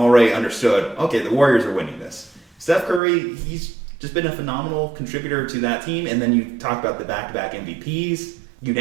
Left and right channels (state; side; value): drops out; left; at 3.0 s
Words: understood, okay, the Warriors are winning this. Steph Curry, he's just been a phenomenal contributor to that team. And then you talk about the back-to-back MVPs,